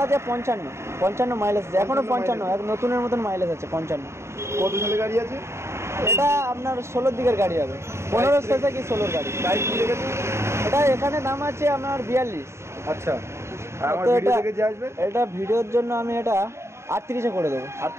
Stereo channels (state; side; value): late; left; 0.13 ms